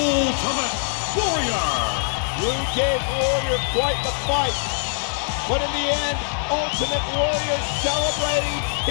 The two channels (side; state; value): right; silent; digital silence